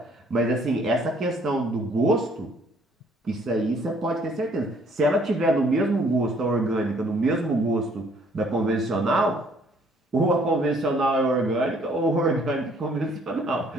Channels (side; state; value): both; normal; correlation 0.62